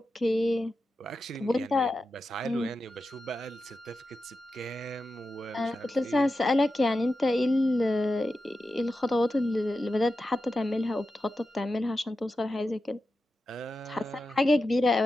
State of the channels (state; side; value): normal; both; correlation 0.91